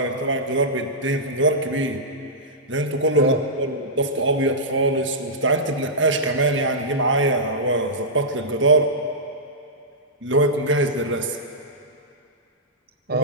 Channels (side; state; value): both; normal; correlation -0.14